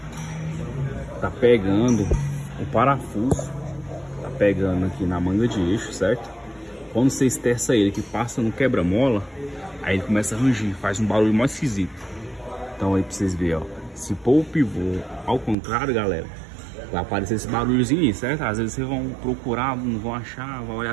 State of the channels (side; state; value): left; drops out; at 15.6 s